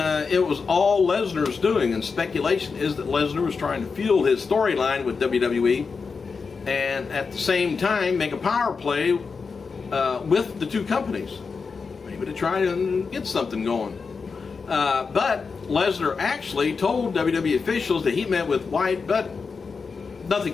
it was all Lesnar's doing, and speculation is that Lesnar was trying to fuel his storyline with WWE and at the same time make a power play with the two companies, maybe to try and get something going. But Lesnar actually told WWE officials that he met with White, but nothing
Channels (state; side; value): quieter; right; 5.0 dB